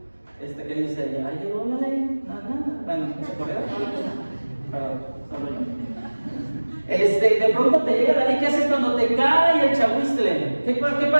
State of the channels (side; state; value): both; inverted; correlation -1.00